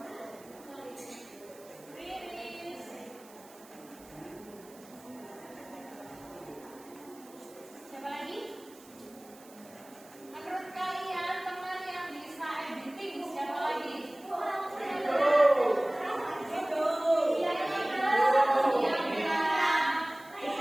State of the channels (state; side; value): noise; right; hiss, 23 dB below the sound